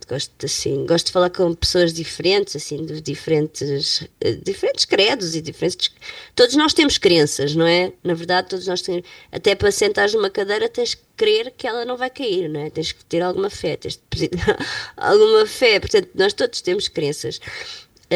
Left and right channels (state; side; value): identical; both; correlation 1.00